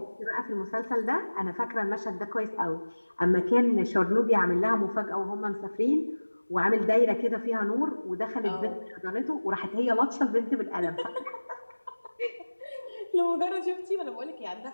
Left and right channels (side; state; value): both; inverted; correlation -1.00